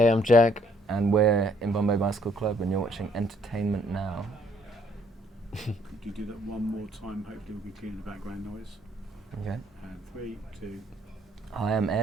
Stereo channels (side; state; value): both; normal; correlation 0.65